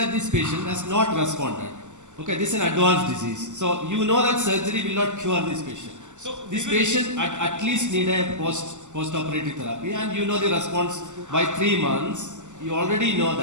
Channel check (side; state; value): left; late; 0.84 ms